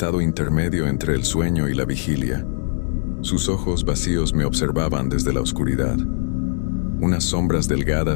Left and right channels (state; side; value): silent; right; 65 dB below the other